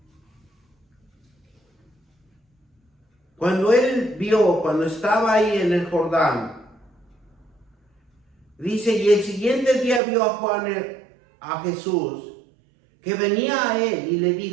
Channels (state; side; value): drops out; left; at 10.0 s